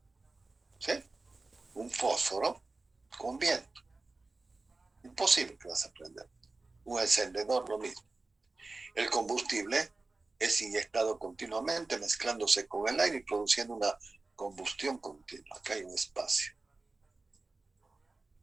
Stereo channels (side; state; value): left; quieter; 3.4 dB